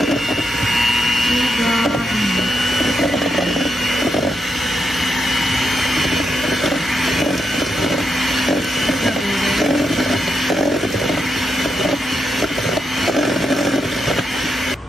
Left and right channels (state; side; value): normal; both; correlation 0.83